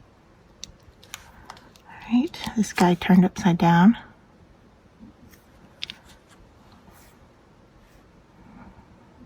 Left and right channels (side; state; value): both; identical; correlation 1.00